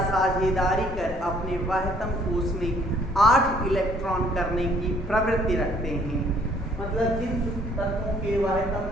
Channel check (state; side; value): normal; both; correlation 0.61